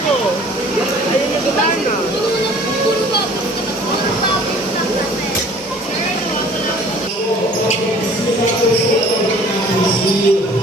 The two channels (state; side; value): normal; both; correlation 0.51